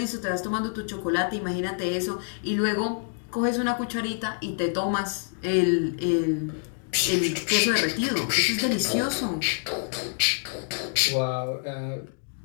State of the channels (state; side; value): silent; right; 60 dB below the other